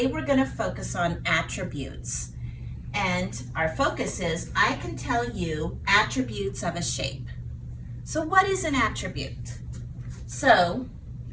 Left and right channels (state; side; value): identical; both; correlation 1.00